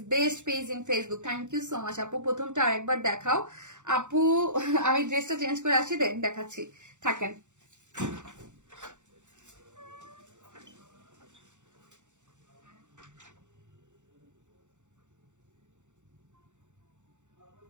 best page in Facebook. Thank you so much আপু। প্রথমটা আরেকবার দেখাও আপু। আমি ড্রেসটা চেঞ্জ করে আসি, দেখাচ্ছি, থাকেন।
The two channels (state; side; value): late; left; 0.85 ms